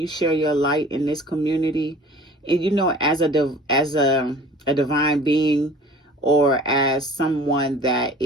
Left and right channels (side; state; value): both; normal; correlation 0.46